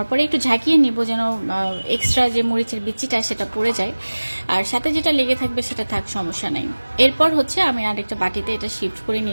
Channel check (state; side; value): inverted; both; correlation -1.00